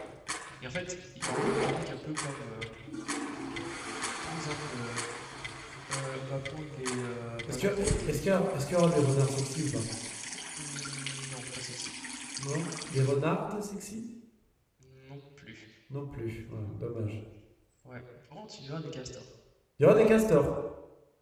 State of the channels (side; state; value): both; identical; correlation 1.00